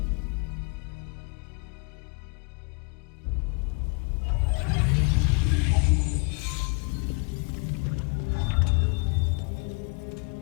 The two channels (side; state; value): right; quieter; 35.1 dB